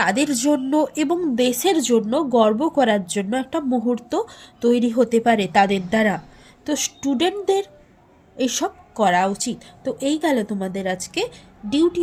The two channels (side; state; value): both; identical; correlation 1.00